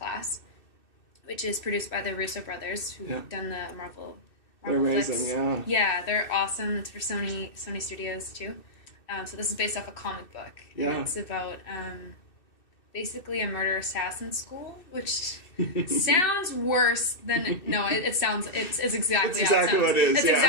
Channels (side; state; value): right; late; 2.6 ms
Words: which is produced by the Russo brothers, who've done the Marvel they're amazing, flicks. yeah. Yeah, they're awesome. It's for Sony Studios, too. So this is based off a comic book. Yeah. And it's about basically a murder-assassin school, which sounds worse than... No, it sounds... It's exactly how it sounds. What it is, It's